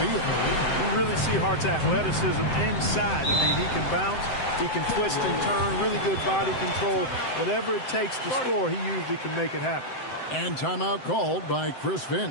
field. You really see Hart's athleticism inside. I mean, he can bounce, he can twist and turn, really good body control. Whatever it takes to score, he usually can make it happen. And timeout called by Chris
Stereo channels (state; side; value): late; right; 7.8 ms